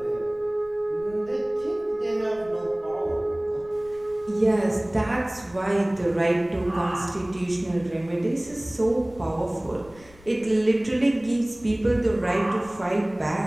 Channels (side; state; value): left; noise; rumble, 24 dB below the sound